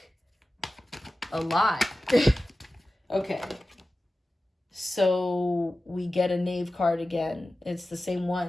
a lot. Okay, so we get a Knave card again. It's the same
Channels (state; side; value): normal; both; correlation 0.95